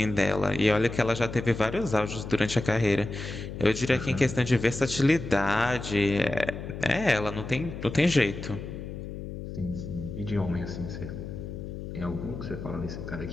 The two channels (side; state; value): left; noise; hum, 8 dB below the sound